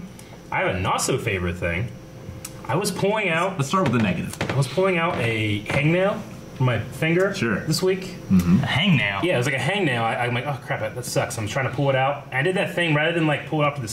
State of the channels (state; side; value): identical; both; correlation 1.00